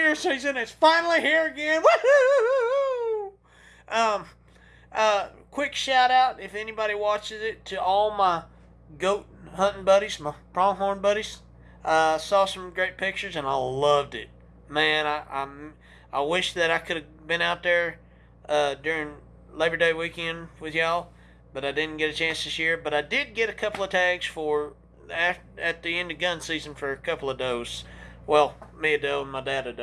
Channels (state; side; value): identical; both; correlation 1.00